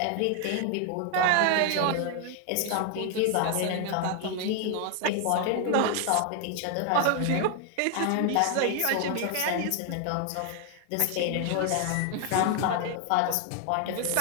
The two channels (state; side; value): different; both; correlation 0.00